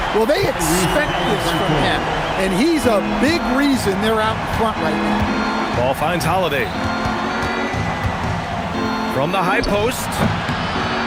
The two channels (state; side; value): identical; both; correlation 1.00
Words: Well, they expect this from him, and he's a big reason they're out in front right now. Ball finds Holiday. From the high post.